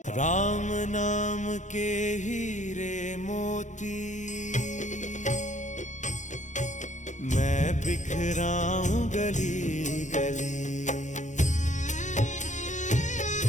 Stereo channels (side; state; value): right; late; 0.35 ms